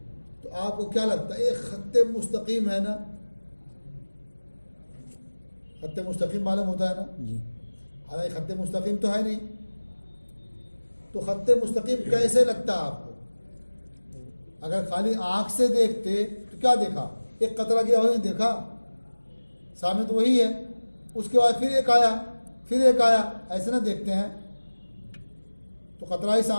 तो आपको क्या लगता है? एक खत्ते मुस्तकीम है ना? खत्ते मुस्तकीम मालूम होता है ना? हालांकि खत्ते मुस्तकीम तो है नहीं। तो खत्ते मुस्तकीम कैसे लगता है आपको? अगर खाली आंख से देखते तो क्या देखा? एक कतरा गया वही देखा, सामने तो वही है। उसके बाद फिर एक आया, फिर एक आया, ऐसे ना देखते हैं। तो कतरा ही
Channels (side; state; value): both; inverted; correlation -1.00